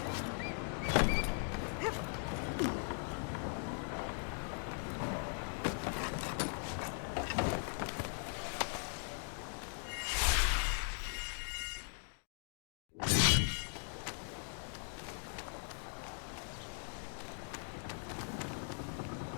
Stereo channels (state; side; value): silent; right; 51 dB below the other